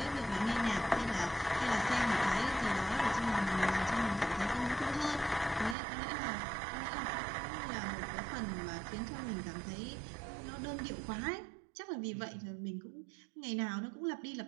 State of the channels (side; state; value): left; drops out; at 5.8 s